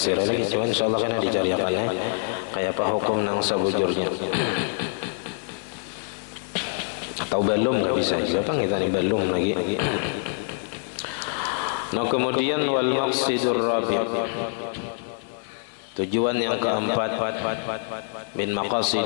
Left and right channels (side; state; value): right; silent; digital silence